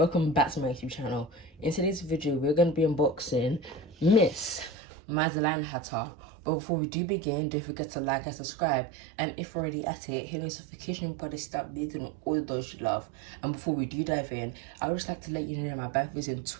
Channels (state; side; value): drops out; left; at 4.8 s